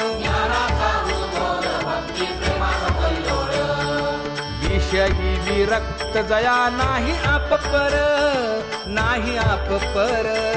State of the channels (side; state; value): both; identical; correlation 1.00